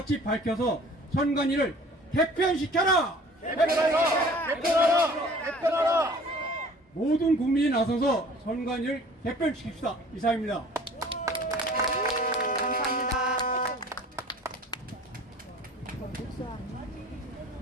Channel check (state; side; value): normal; both; correlation 0.49